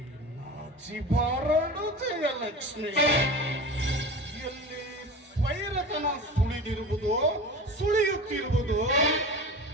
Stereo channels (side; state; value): both; normal; correlation 0.33